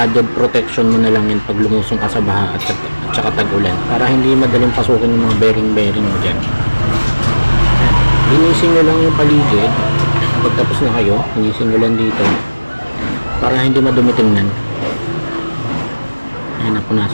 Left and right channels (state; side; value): inverted; both; correlation -1.00